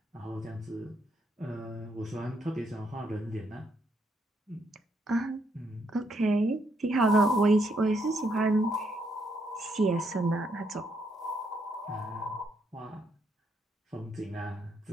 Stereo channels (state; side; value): normal; both; correlation 0.75